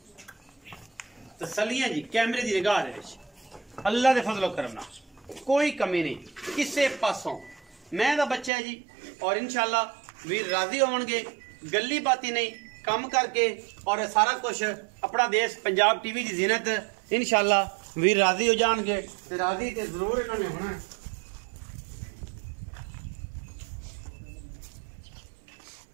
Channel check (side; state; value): left; drops out; at 8.5 s